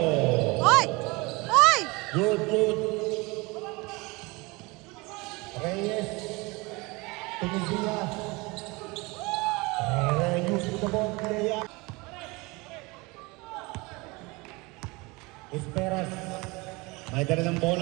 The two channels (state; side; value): quieter; left; 25.0 dB